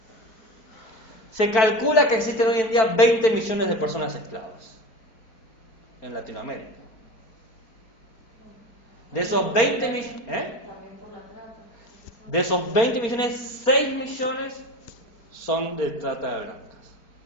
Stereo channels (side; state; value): right; late; 4.6 ms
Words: Se calcula que existen hoy en día 20 millones de personas esclavas en Latinoamérica. De esos 20 millones, De esos 20 millones, 6 millones son de trata de blancas.